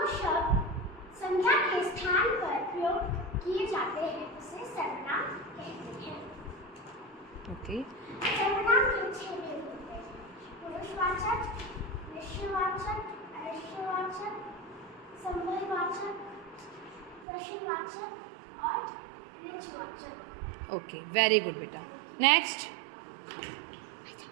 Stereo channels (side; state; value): left; drops out; at 17.2 s